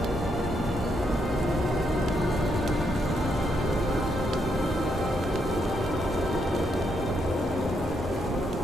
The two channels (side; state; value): both; normal; correlation 0.78